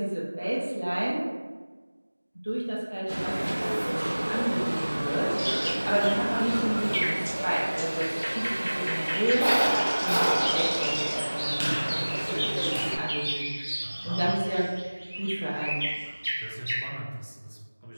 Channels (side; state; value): both; inverted; correlation -1.00